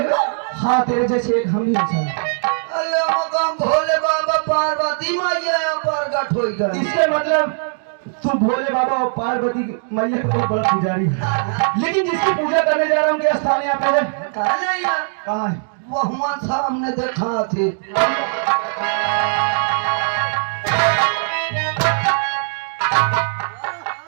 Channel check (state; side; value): silent; left; digital silence